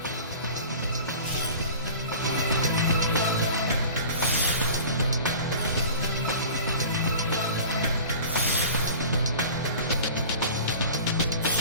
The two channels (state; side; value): inverted; both; correlation -0.40